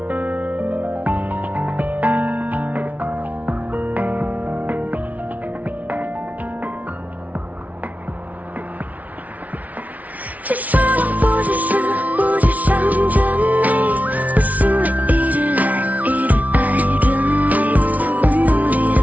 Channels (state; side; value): late; left; 0.071 ms